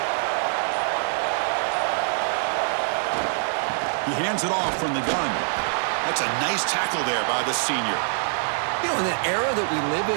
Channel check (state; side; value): silent; left; 60 dB below the other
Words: He hands it off from the gun. That's a nice tackle there by the senior. You know, in the era that we live